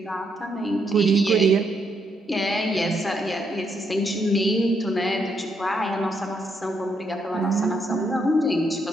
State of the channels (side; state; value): both; normal; correlation 0.77